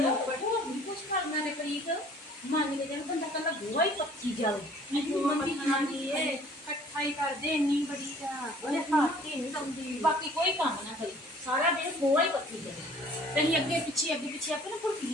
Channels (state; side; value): normal; both; correlation 0.53